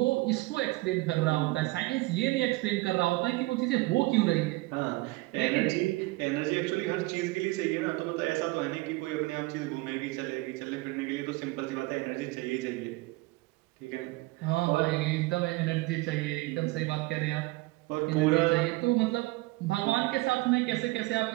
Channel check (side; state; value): left; quieter; 22.0 dB